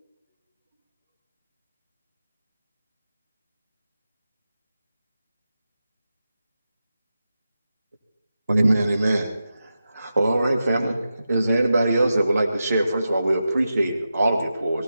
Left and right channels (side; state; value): both; inverted; correlation -0.90